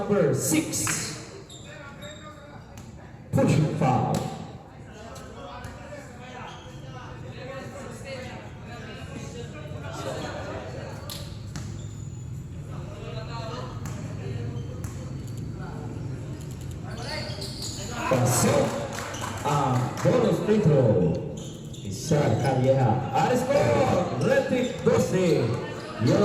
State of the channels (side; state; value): both; identical; correlation 1.00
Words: 6. Pushing foul. Pasok ang bonus free throw ni Sir Calleja. Aris po, red team 12,